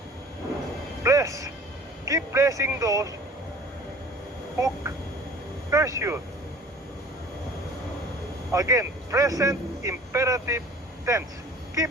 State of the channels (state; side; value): normal; both; correlation 0.47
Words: Bless. Keep blessing those who curse you. Again, present imperative tense.